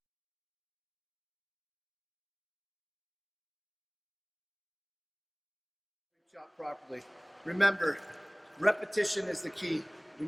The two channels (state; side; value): identical; both; correlation 1.00